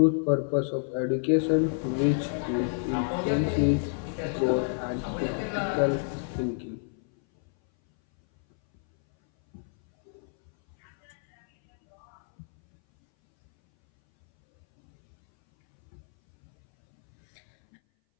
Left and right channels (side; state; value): right; silent; 59 dB below the other